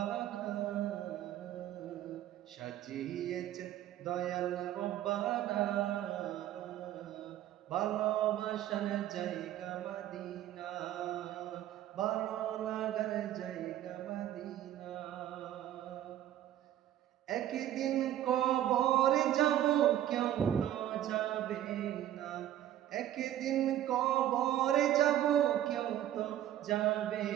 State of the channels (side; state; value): left; quieter; 12.2 dB